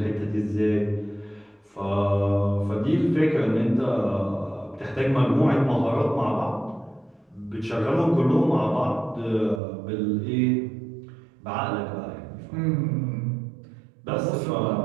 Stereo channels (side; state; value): left; drops out; at 9.6 s